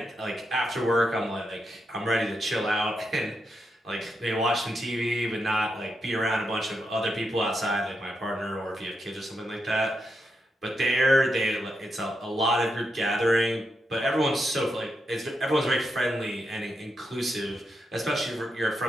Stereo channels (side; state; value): both; normal; correlation 0.84